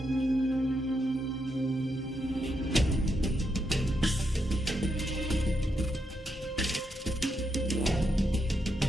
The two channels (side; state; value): both; normal; correlation 0.81